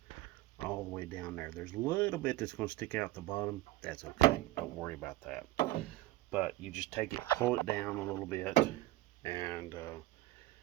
all the way down there. There's a little bit that's going to stick out the bottom. That's okay. Don't worry about that. But you just take it, pull it down a little bit, and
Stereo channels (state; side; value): quieter; left; 17.6 dB